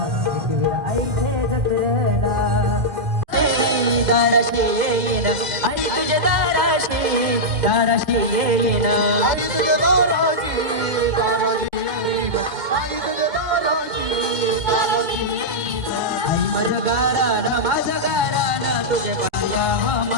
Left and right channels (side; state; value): left; late; 2.1 ms